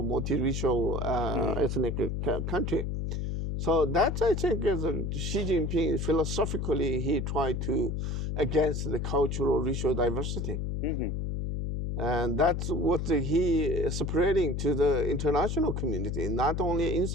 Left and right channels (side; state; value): left; noise; hum, 2 dB below the sound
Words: multiracial ethnic country. So that, I think, is Xi Jinping, philosophically, he tried to against the cultural, racial diversity. And that's what he is spreading to the international community, not only